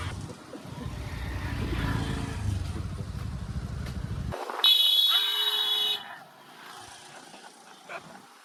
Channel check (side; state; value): both; identical; correlation 1.00